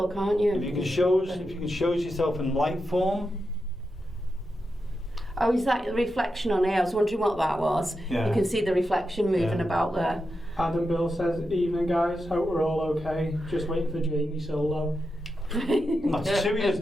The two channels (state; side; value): normal; both; correlation 0.88